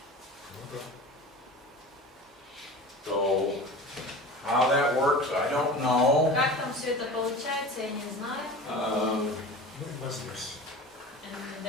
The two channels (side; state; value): both; normal; correlation 0.36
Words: Ну да. So how that works, I don't know. Как там все это получается, я не знаю. Ну и вознесся. And